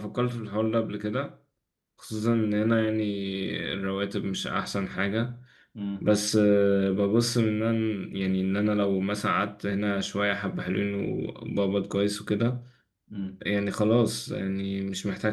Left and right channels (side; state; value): both; identical; correlation 1.00